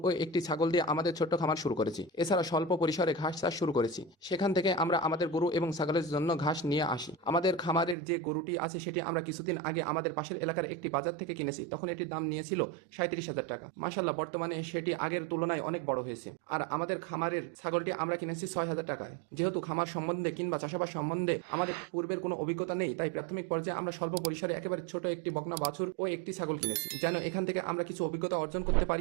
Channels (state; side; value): drops out; left; at 8.0 s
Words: ও একটি ছাগল দিয়ে আমাদের ছোট্ট খামার শুরু করেছি। এছাড়া স্বল্প পরিসরে ঘাস চাষ শুরু করেছি। সেখান থেকে আমরা আমাদের গরু এবং ছাগলের জন্য ঘাস নিয়ে আসি। আমাদের খামারের যে গরুটি আছে সেটি আমরা কিছুদিন আগে আমাদের পাশের এলাকার একটি বাজার থেকে কিনেছি। তখন এটির দাম নিয়েছিল 37,000 টাকা। মাশাআল্লাহ, বর্তমানে সেটি আগের তুলনায় অনেক বড় হয়েছে। আর আমাদের খামারের ছাগলটি আমরা কিনেছি 6,000 টাকায়। যেহেতু খামার সম্বন্ধে কিংবা চাষাবাদ সম্বন্ধে আমাদের পূর্বের কোনো অভিজ্ঞতা নেই, তাই প্রাথমিক পর্যায়ে আমরা স্বল্প পরিসরে একেবারে ছোট একটি বকনা বাছুর ও একটি ছাগল কিনেছি, যেন এখান থেকে আমরা কিছু অভিজ্ঞতা অর্জন করতে